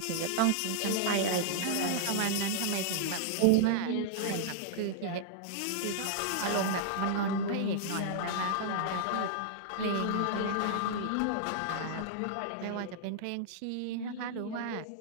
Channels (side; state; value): both; different; correlation -0.01